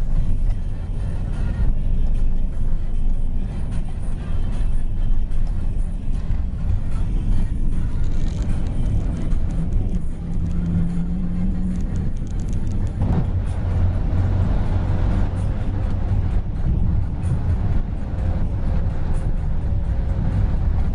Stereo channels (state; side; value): identical; both; correlation 1.00